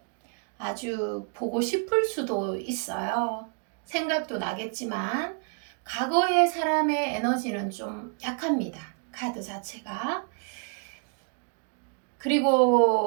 아주 보고 싶을 수도 있어요. 생각도 나겠지만 과거의 사람의 에너지는 좀 약합니다. 카드 자체가.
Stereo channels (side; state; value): left; quieter; 37.9 dB